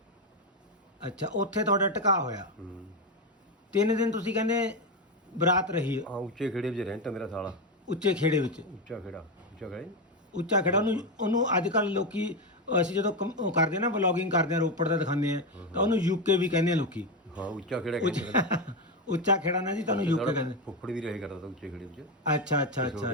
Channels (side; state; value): both; normal; correlation 0.11